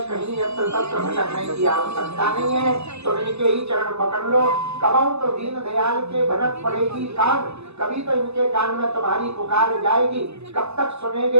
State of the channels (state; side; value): late; left; 0.80 ms